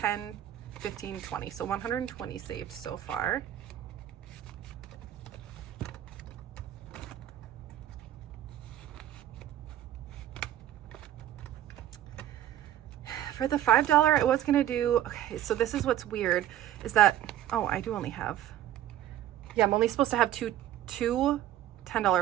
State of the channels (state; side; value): quieter; left; 12.4 dB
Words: 15, 20. So 120 saved so far. For the $5, I was going to do, okay, so this is what's weird, is that, oh, I do only have, yeah, I'm only supposed to have two